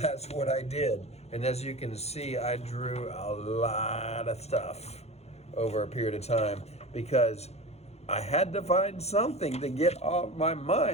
what I did. And as you can see, I drew a lot of stuff over a period of time because I had to find something to get off my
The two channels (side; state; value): right; late; 0.31 ms